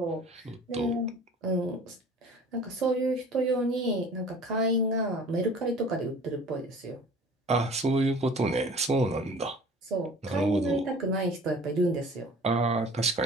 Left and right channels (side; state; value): both; normal; correlation 0.46